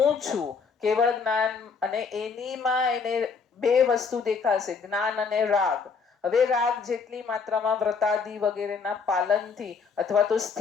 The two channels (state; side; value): quieter; right; 5.3 dB